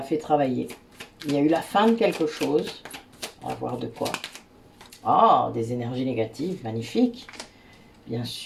fait travailler. Il y a eu la fin de quelque chose. On va voir de quoi. Ah, des énergies négatives, magnifique. Bien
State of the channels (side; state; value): both; identical; correlation 1.00